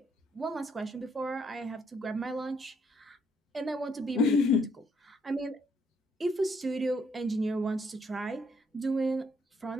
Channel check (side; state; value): both; normal; correlation 0.70